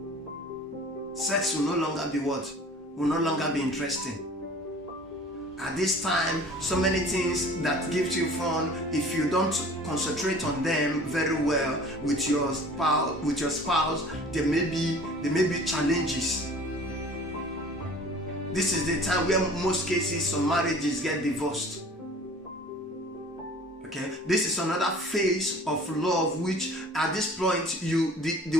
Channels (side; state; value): both; normal; correlation 0.46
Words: Sex will no longer be what? Will no longer be interesting. At this time, so many things that gives you fun, if you don't concentrate on them very well with your spouse, there may be challenges. This is the time where most cases some marriages get divorced. Okay, this is another phase of love, which at this point